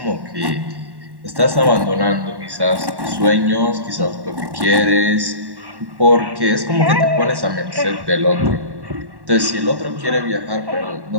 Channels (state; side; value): late; left; 1.1 ms